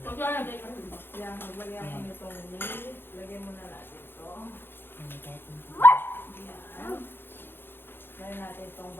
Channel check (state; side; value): late; right; 0.10 ms